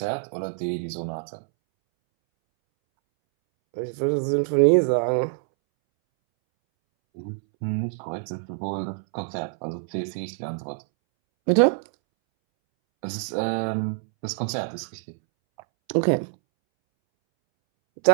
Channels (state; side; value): silent; left; 61 dB below the other